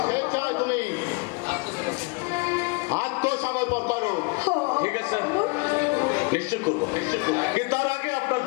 স্বেচ্ছায় তুমি আত্মসমর্পণ করো। ঠিক আছে নিশ্চয় করবো, কিন্তু তার আগে আপনার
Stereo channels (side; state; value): right; quieter; 29.4 dB